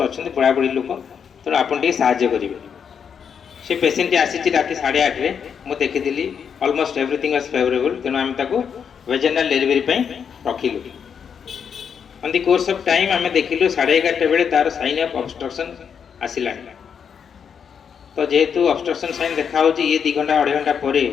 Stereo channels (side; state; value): right; quieter; 7.2 dB